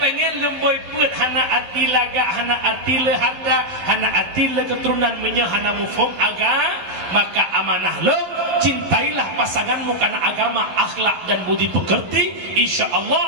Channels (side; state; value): left; late; 11 ms